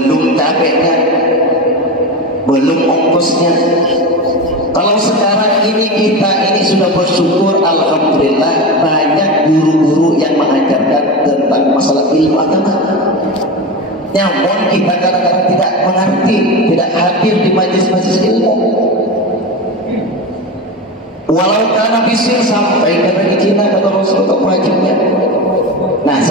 capeknya, belum ongkosnya. Kalau sekarang ini kita ini sudah bersyukur, alhamdulillah banyak guru-guru yang mengajarkan tentang masalah ilmu agama. Namun kita kadang-kadang tidak mengerti, tidak hadir di majelis-majelis ilmu. Walau berhasil sampai ke Cina kata Rasulullah wajibnya. Nah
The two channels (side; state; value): both; normal; correlation 0.23